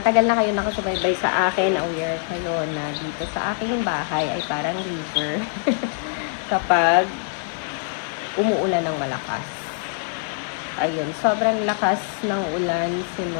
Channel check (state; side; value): silent; right; digital silence